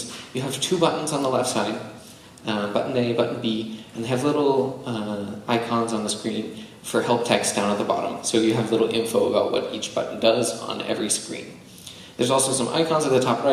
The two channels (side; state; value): both; identical; correlation 1.00